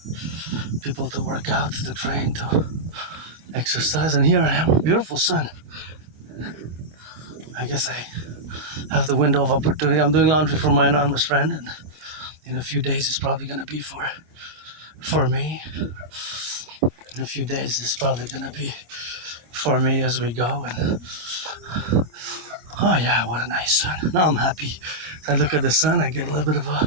people to work out, to train, to exercise, and here I am, beautiful sun. I guess I have the window of opportunity. I'm doing laundry for my anonymous friend, and in a few days it's probably going to be for me. In a few days it's probably going to be for me as we go. And oh yeah, what a nice sun. Now I'm happy. I look at the sun, I get a little bit of a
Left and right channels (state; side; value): late; left; 25 ms